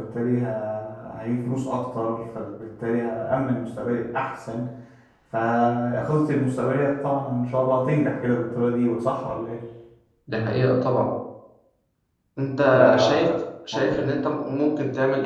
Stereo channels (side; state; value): both; identical; correlation 1.00